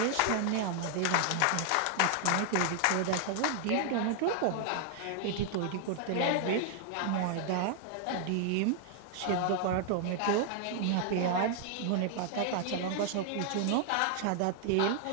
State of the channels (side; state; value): both; different; correlation 0.00